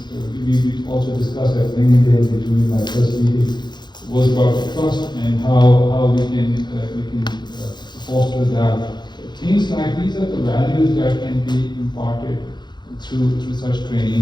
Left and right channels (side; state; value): right; late; 0.21 ms